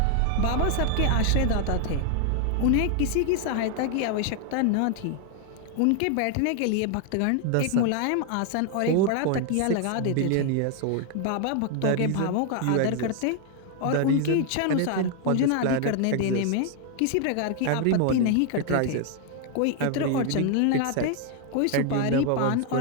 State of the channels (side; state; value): both; different; correlation 0.00